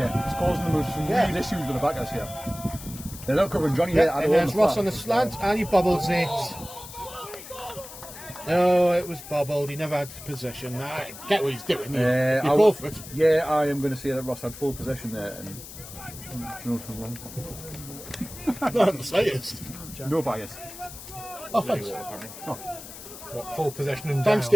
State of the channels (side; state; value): left; noise; hiss, 14 dB below the sound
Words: it's causing them some real issues with the backers here. They're not covering Johnny here. And there's Ross on the slant, and he bobbles it. No, it was bobbled. He never had possession. I get what he's doing. You go for it. Yeah, I am going to say that Ross had full possession there. And Not the slightest. no bias. Oh, thanks. What, full possession and Thanks, down?